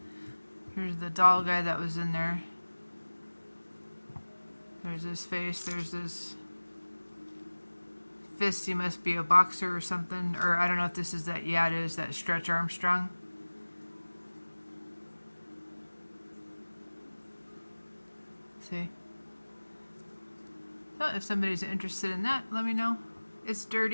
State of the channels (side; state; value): both; inverted; correlation -1.00